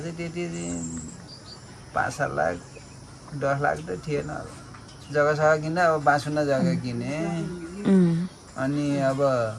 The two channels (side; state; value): both; identical; correlation 1.00